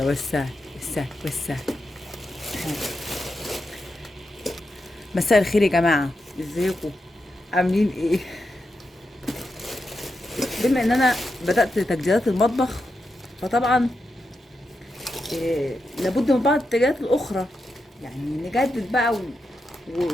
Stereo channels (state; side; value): normal; both; correlation 0.87